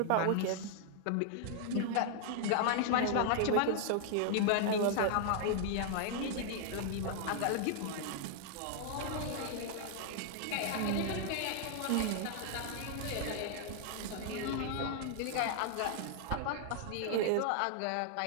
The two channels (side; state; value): both; different; correlation 0.00